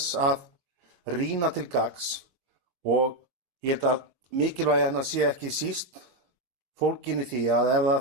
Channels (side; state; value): left; late; 22 ms